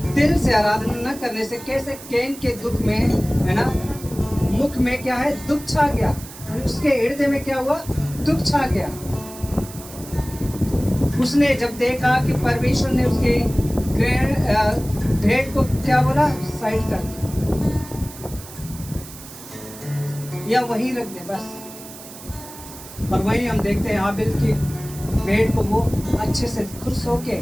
दिल से आराधना न करने से कैसे कैन के दुख में, है ना, मुख में क्या है, दुख छा गया। उसके हृदय में क्या हुआ, दुख छा गया। उसने जब देखा कि परमेश्वर ने उसके भेंट को क्या बोला, साइड कर दिया या वहीं रख दे बस। और वहीं हम देखते हैं हाबिल की भेंट को वो अच्छे से खुश होके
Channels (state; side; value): noise; right; hiss, 16 dB below the sound